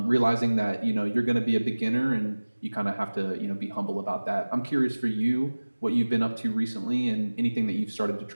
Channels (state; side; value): inverted; both; correlation -1.00